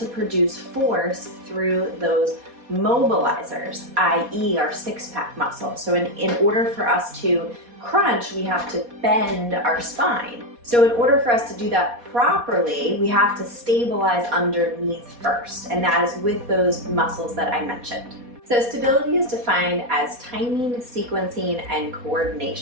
produce force through those mobilizers, i.e. our six-pack muscle. So in order for us to crunch, we have to bend our spine. So in order for us to do that properly, we have to stabilize underneath first, and that is with those muscles that I mentioned. So stability is defined as timing, sequencing, and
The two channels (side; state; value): left; late; 4.2 ms